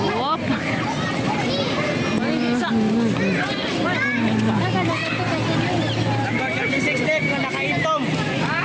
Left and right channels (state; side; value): identical; both; correlation 1.00